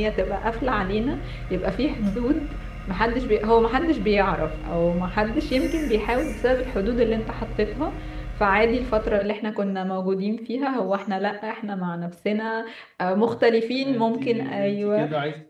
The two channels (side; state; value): both; identical; correlation 1.00